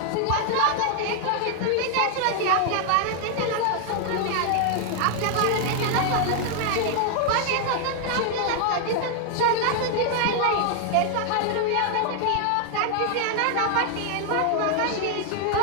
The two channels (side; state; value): both; different; correlation 0.00